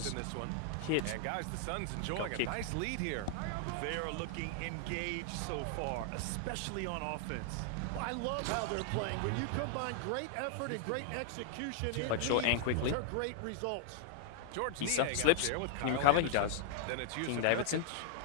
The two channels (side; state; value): both; different; correlation 0.00